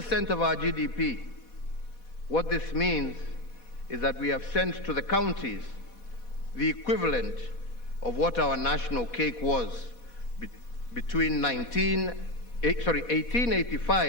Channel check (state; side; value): late; right; 4.1 ms